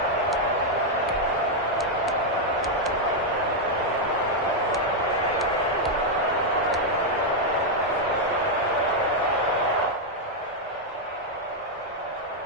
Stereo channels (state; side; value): normal; both; correlation -0.01